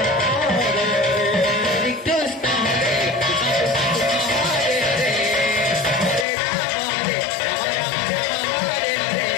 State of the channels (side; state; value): right; drops out; at 6.2 s